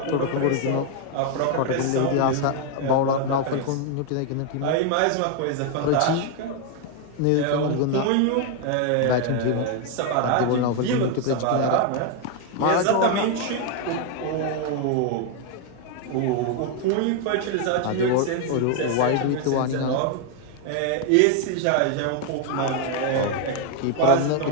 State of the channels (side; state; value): both; different; correlation 0.01